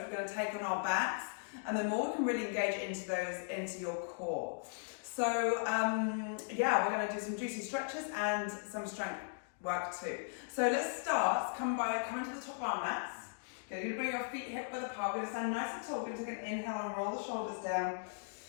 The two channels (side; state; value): right; silent; digital silence